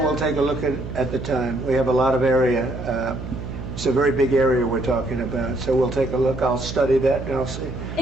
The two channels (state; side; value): noise; right; hum, 9 dB below the sound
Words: we'll take a look at the time. We have a lot of area. It's a very big area we're talking about, so we'll take a look. I'll study that and I'll see.